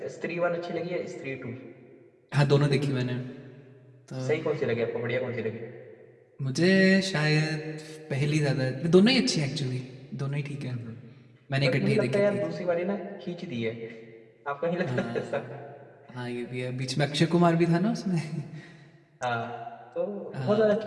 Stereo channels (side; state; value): both; identical; correlation 1.00